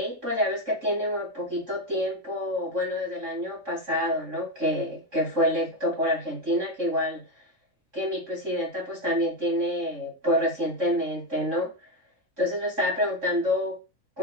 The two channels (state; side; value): late; left; 3.6 ms